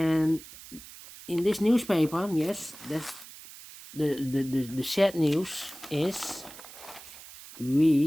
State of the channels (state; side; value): noise; right; hiss, 17 dB below the sound